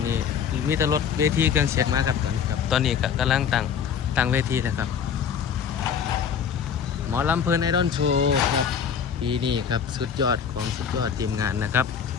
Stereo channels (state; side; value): quieter; right; 7.4 dB